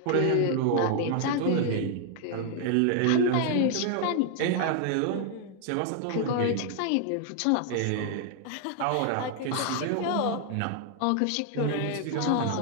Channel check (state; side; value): different; both; correlation 0.00